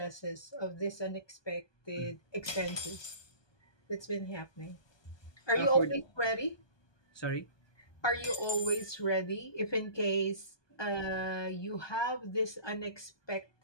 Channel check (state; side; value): late; right; 1.2 ms